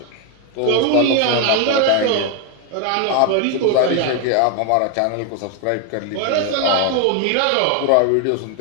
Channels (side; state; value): both; different; correlation 0.01